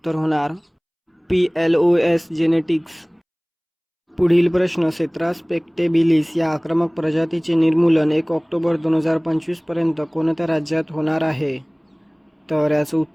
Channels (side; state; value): both; identical; correlation 1.00